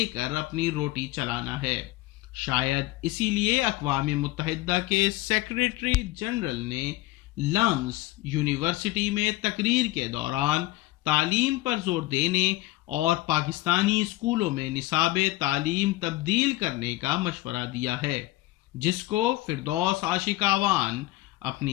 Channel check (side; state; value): right; quieter; 18.4 dB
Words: کر اپنی روٹی چلانا ہے۔ شاید اسی لیے اقوام متحدہ کے سیکریٹری جنرل نے لمس یونیورسٹی میں تقریر کے دوران تعلیم پر زور دینے اور پاکستانی اسکولوں میں نصاب تعلیم تبدیل کرنے کا مشورہ دیا ہے، جس کو فردوس عاشقاوان